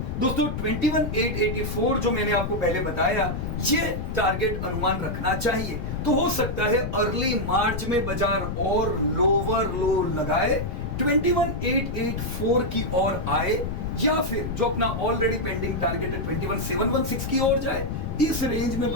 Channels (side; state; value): left; noise; rumble, 4 dB below the sound